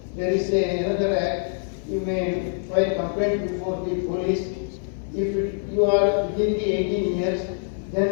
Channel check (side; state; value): right; silent; 56 dB below the other